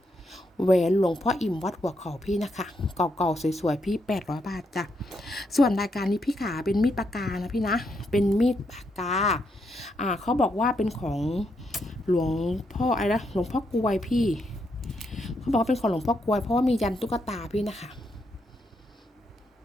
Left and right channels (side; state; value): both; normal; correlation 0.79